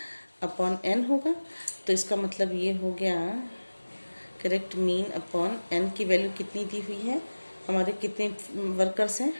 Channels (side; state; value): both; inverted; correlation -1.00